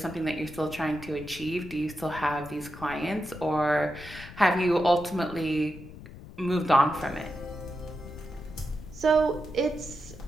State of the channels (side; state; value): left; noise; rumble, 15 dB below the sound